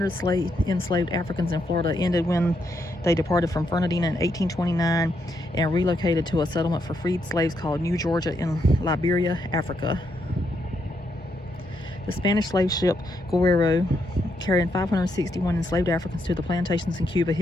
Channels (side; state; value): both; normal; correlation 0.78